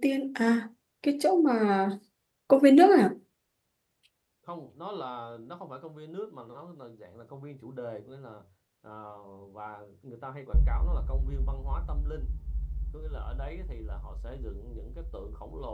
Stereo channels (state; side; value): identical; both; correlation 1.00